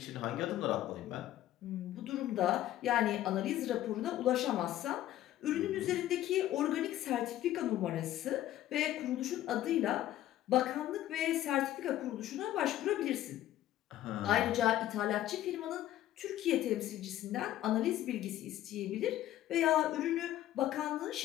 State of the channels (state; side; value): quieter; right; 13.4 dB